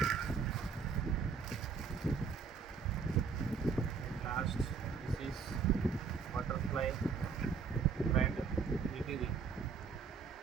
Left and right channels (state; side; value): quieter; left; 5.6 dB